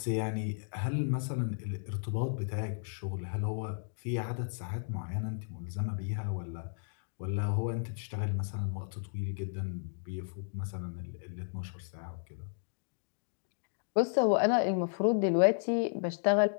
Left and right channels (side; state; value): right; silent; digital silence